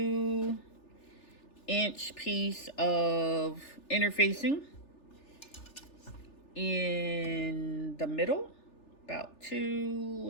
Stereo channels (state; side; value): late; right; 3.4 ms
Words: piece of interfacing in the middle, about